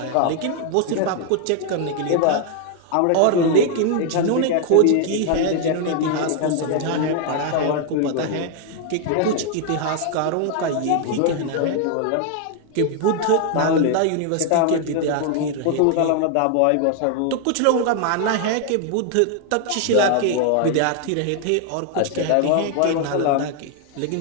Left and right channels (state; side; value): different; both; correlation 0.00